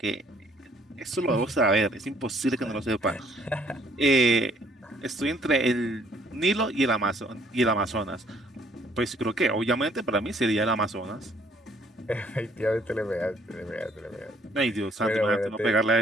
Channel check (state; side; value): normal; both; correlation 0.63